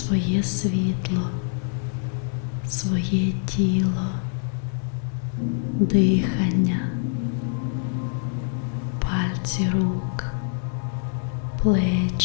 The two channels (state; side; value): silent; right; 59 dB below the other